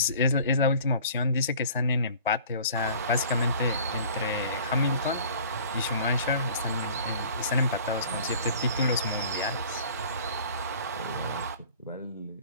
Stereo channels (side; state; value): both; inverted; correlation -0.48